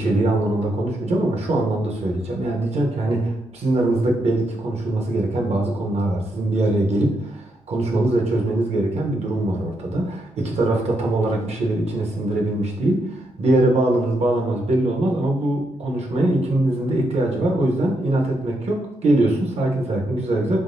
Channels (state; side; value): normal; both; correlation 0.80